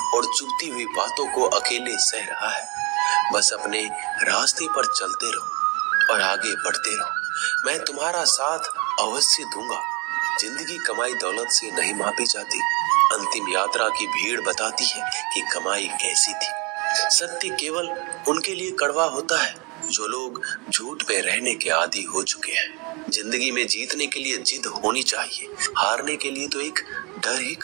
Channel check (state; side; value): quieter; left; 28.8 dB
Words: और चुभती हुई बातों को अकेले सह रहा है, बस अपने रास्ते पर चलते रहो और आगे बढ़ते रहो। मैं तुम्हारा साथ अवश्य दूंगा। जिंदगी कमाई दौलत से नहीं मापी जाती। अंतिम यात्रा की भीड़ बताती है कि कमाई कैसी थी। सत्य केवल उनके लिए कड़वा होता है जो लोग झूठ पे रहने के आदी हो चुके हैं। जिंदगी में जीतने के लिए जिद होनी चाहिए, हारने के लिए तो एक डर ही